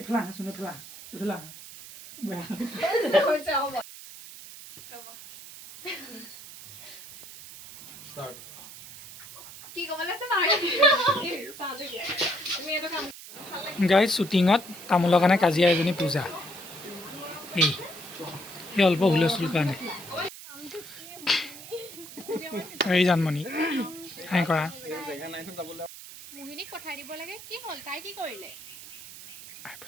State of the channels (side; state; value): right; noise; hiss, 15 dB below the sound